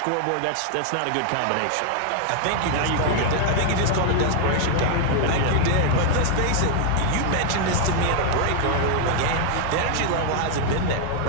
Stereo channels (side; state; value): both; different; correlation 0.00